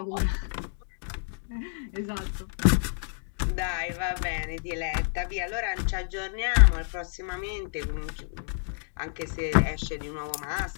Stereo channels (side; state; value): right; silent; 59 dB below the other